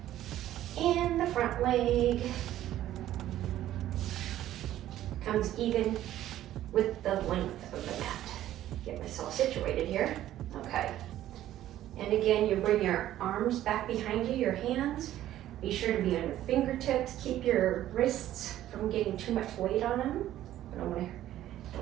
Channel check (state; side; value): quieter; left; 13.1 dB